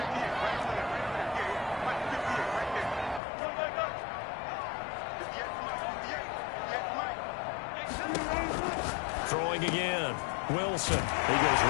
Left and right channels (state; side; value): drops out; right; at 3.2 s